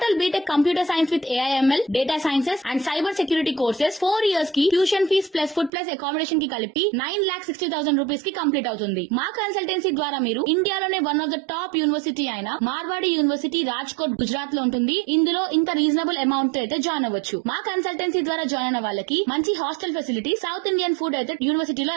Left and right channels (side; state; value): left; drops out; at 5.7 s